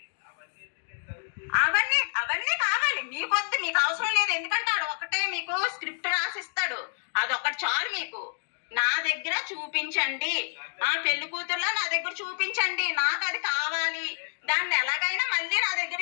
అవన్నీ కావాలి మీకొద్దు. మీకు అవసరం లేదు. ఎందుకంటే ఆడు ఒకటే మీకు స్క్రిప్ట్ రాసిస్తాడు, అదొకటి చాలు మీకు. నా దగ్గర చూపించండి, పెళ్లి కూతురులో నా దగ్గర చూపించండి, నాకు అది కావాలి. దాన్ని ఎలాగైనా మళ్ళీ నా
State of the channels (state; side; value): silent; right; digital silence